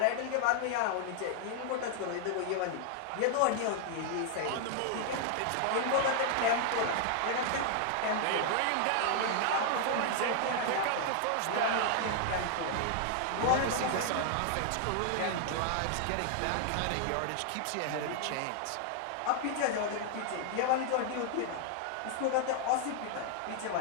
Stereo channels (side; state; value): both; different; correlation 0.00